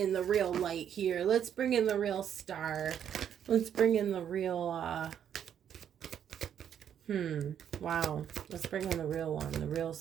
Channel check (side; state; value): left; quieter; 9.1 dB